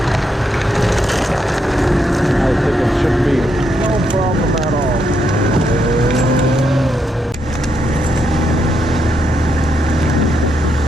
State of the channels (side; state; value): both; normal; correlation 0.79